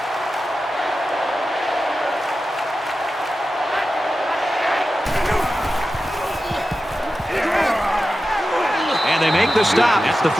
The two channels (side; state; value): both; normal; correlation 0.92